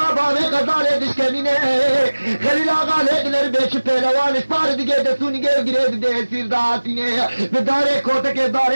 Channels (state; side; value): inverted; both; correlation -1.00